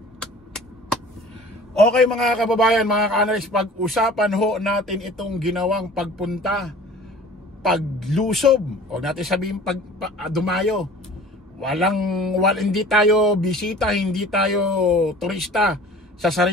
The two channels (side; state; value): both; normal; correlation 0.45